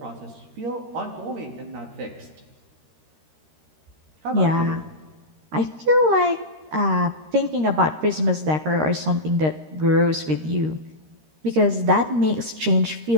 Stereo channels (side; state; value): left; late; 13 ms